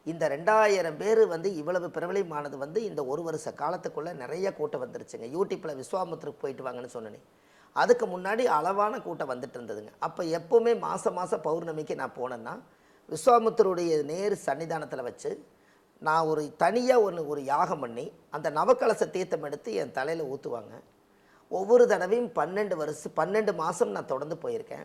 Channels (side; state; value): both; identical; correlation 1.00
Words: இந்த 2000 பேர் வந்து இவ்வளவு பிரபலமானது வந்து இந்த ஒரு வருஷ காலத்துக்குள்ளே நிறைய கூட்டம் வந்துருச்சுங்க. யூடியூப்பில் விஸ்வாமித்திரக்கு போயிட்டு வாங்கன்னு சொன்னேன். அதுக்கு முன்னாடி அளவான கூட்டம் வந்துட்டு இருந்ததுங்க. அப்போ எப்போவுமே மாதம் பௌர்ணமிக்கு நான் போனேன்னா, விஸ்வாமித்திரருடைய நேர் சன்னிதானத்தில் வச்சு நான் ஒரு தனியாக ஒரு யாகம் பண்ணி அந்த நவக்கலச தீர்த்தம் எடுத்து என் தலையில் ஊற்றுவாங்க. ஒவ்வொரு தடவையும் 12 மாதம் நான் தொடர்ந்து